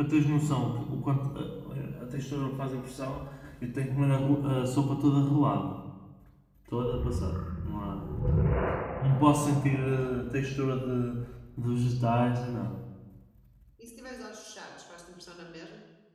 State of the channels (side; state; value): both; identical; correlation 1.00